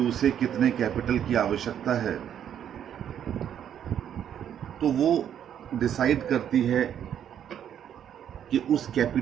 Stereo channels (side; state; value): left; quieter; 9.5 dB